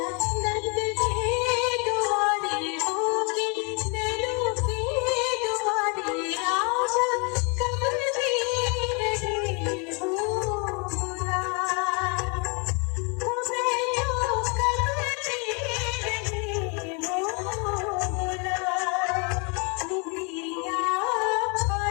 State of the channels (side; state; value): right; quieter; 33.9 dB